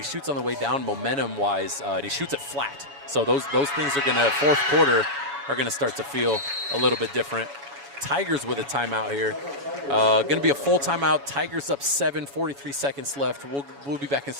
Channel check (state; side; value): late; left; 7.1 ms